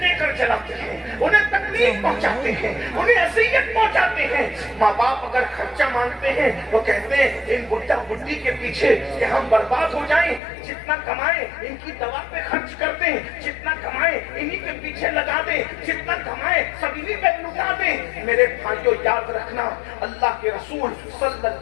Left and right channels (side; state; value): right; drops out; at 10.4 s